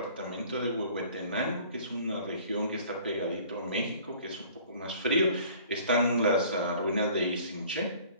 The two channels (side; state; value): both; inverted; correlation -0.51